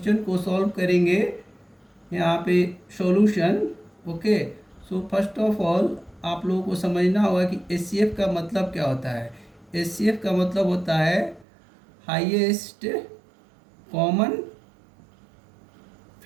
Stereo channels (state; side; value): drops out; left; at 11.5 s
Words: को सॉल्व करेंगे। यहाँ पे solution. Okay, so first of all आप लोगों को समझना होगा कि HCF का मतलब क्या होता है। HCF का मतलब होता है हाईएस्ट कॉमन